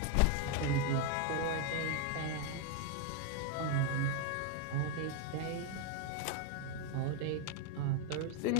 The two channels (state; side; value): different; both; correlation 0.01